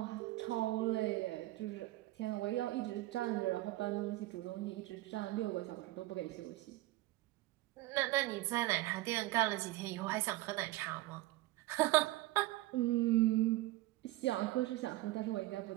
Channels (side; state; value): left; quieter; 18.2 dB